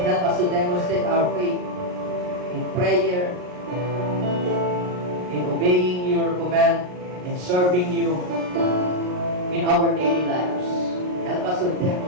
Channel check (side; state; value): left; late; 39 ms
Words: us to demonstrate our faith in prayer, in obeying your command, in serving you in our daily lives. Help us to